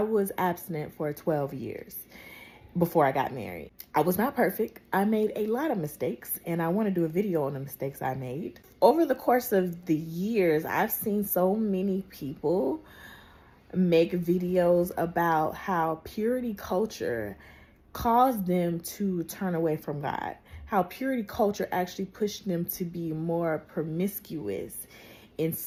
abstinent for 12 years before I got married. I was not perfect. I made a lot of mistakes, and I want to do a video on the mistakes I made. Over the course of the years, I've seen so many people make videos about how purity culture caused them to turn away from God, how purity culture actually pushed them to be more promiscuous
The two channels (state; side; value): identical; both; correlation 1.00